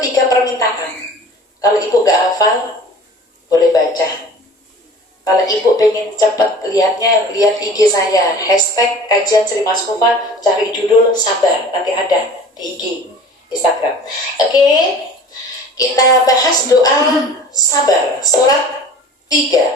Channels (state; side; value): normal; both; correlation 0.43